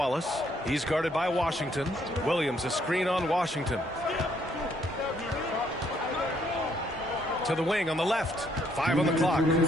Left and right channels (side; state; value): both; normal; correlation 0.69